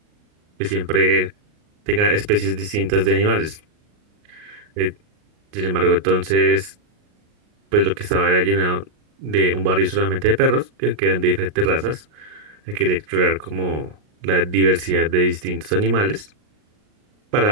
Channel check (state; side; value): late; left; 38 ms